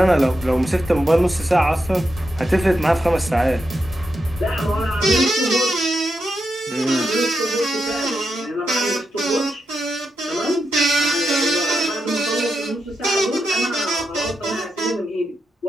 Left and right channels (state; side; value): normal; both; correlation 0.86